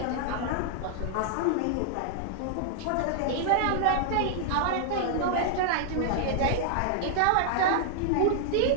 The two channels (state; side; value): different; both; correlation -0.01